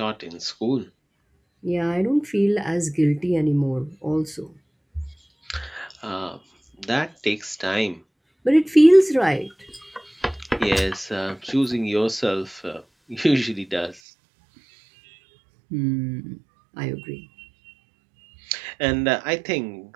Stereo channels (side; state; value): left; drops out; at 14.0 s